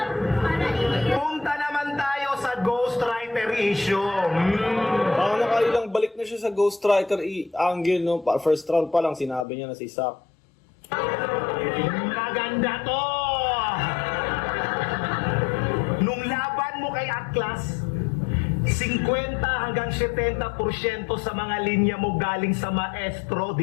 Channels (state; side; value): drops out; right; at 9.5 s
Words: punta naman tayo sa ghostwriter issue. Parang nakailang balik na siya sa ghostwriter angle, no? First round pa lang, sinabi niya na si Sak. Maganda to! Nung laban mo kay Atlas, 50 hanggang 70% sa mga linya mo galing sa maestro,